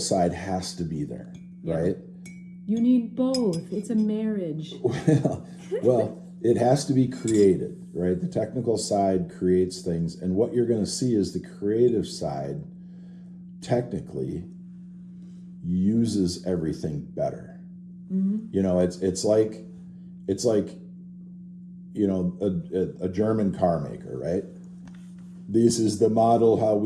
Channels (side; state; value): both; identical; correlation 1.00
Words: has to be there, right? You need both. It's a marriage. Well, it has to be created, right? The technical side creates things, and what you're going to see is the creative side technically uses everything better. Mm-hmm. It's like a German car maker, right? This is the model how